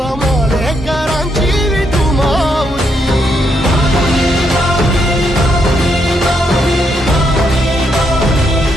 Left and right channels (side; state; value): both; normal; correlation 0.78